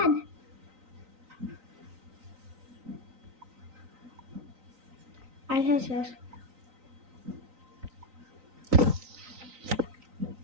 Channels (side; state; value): left; late; 3.9 ms